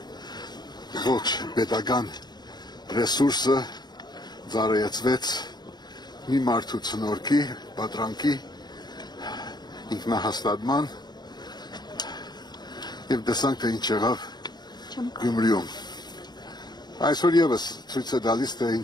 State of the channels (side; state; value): right; late; 0.20 ms